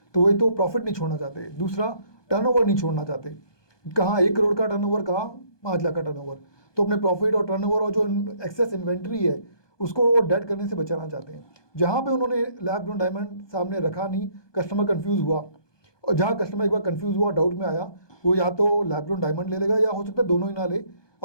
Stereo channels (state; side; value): late; right; 1.2 ms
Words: तो वो एक तो प्रॉफिट नहीं छोड़ना चाहते, दूसरा टर्नओवर नहीं छोड़ना चाहते। कहाँ 1 करोड़ का टर्नओवर, कहाँ 5 लाख का टर्नओवर, तो अपने प्रॉफिट और टर्नओवर और जो एक्सेस इन्वेंट्री है उसको वो डेड करने से बचाना चाहते हैं। जहाँ पे उन्होंने लैब ग्रोन डायमंड सामने रखा नहीं, कस्टमर कंफ्यूज हुआ, और जहाँ कस्टमर एक बार कंफ्यूज हुआ, डाउट में आया, वो या तो लैब ग्रोन डायमंड ले लेगा या हो सकता है दोनों ही ना ले